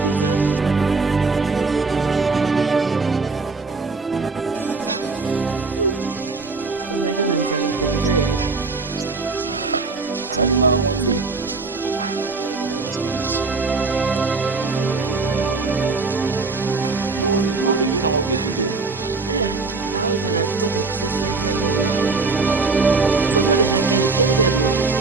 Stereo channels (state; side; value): quieter; left; 4.0 dB